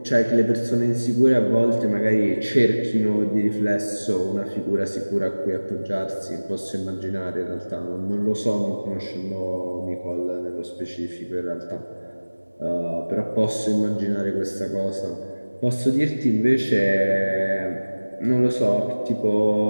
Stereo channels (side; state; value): both; inverted; correlation -1.00